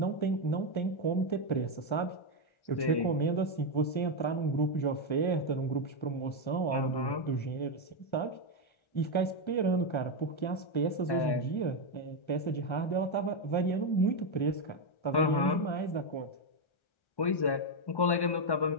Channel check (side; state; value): right; late; 1.3 ms